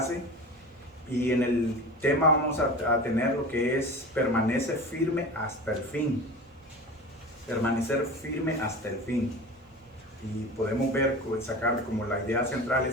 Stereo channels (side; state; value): both; normal; correlation 0.33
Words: y en el tema vamos a tener lo que es permanece firme hasta el fin. Permanecer firme hasta el fin. Y podemos ver, sacar como la idea central